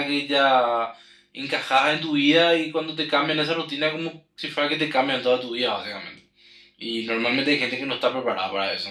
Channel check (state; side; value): identical; both; correlation 1.00